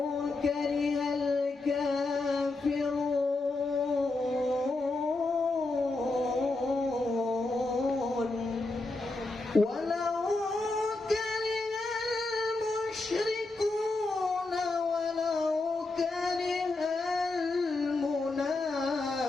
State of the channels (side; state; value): right; quieter; 3.2 dB